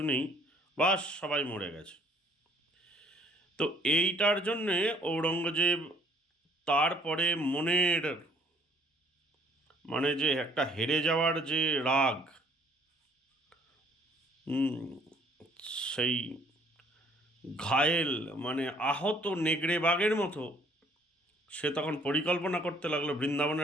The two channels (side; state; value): both; normal; correlation 0.60